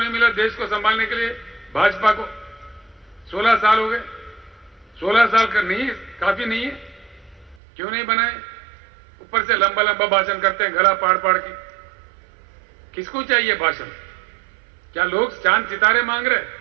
मिला देश को संभालने के लिए भाजपा को, 16 साल हो गए। 16 साल का नहीं है, काफी नहीं है? क्यों नहीं बनाए? ऊपर से लंबा लंबा भाषण करते हैं, गला पाड़ पाड़ के। किसको चाहिए भाषण? क्या लोग चांद सितारे मांग रहे,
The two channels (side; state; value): left; drops out; at 7.6 s